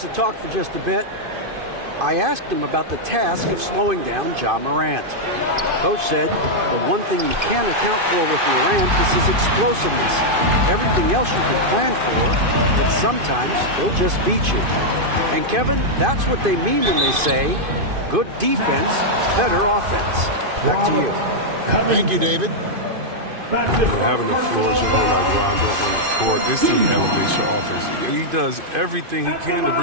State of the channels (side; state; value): left; late; 2.5 ms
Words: talk for just a bit. I asked him about the task of slowing down Ja Morant. Coach said the one thing you can't account for with Morant is his explosiveness. Everything else you can plan for, but sometimes he'll just beat you. And Kevin, that's what they mean when they say good defense, better offense. Back to you. Thank you, David. Having a floor general like Rondo on the court, this team elevates your offense. He does everything he can to